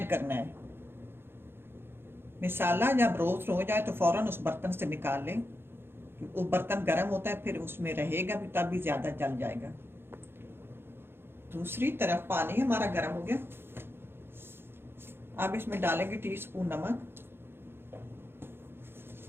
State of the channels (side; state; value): left; late; 0.11 ms